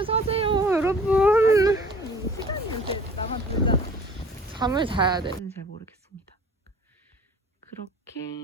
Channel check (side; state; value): both; normal; correlation 0.48